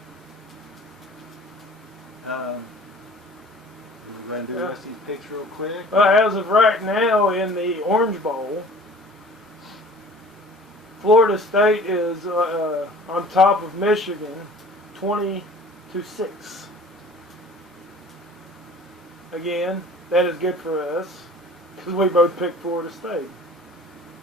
We're going to do the rest of these picks real quick. As of right now, in the Orange Bowl, Florida State is on top of Michigan, 20-6. Again, that is good for us because we both picked Florida State.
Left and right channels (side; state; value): both; normal; correlation 0.46